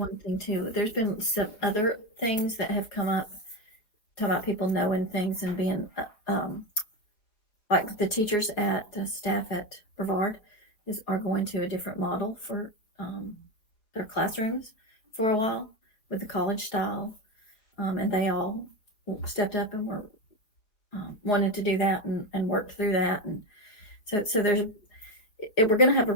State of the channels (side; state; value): right; late; 4.7 ms